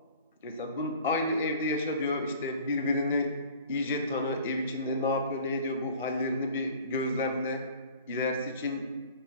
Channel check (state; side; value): inverted; both; correlation -0.46